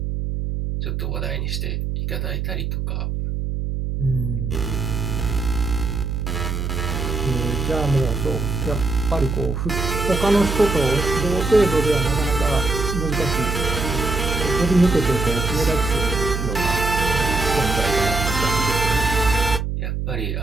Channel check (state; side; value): noise; right; hum, 2 dB below the sound